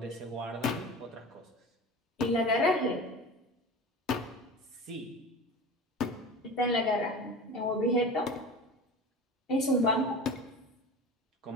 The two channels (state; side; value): normal; both; correlation 0.33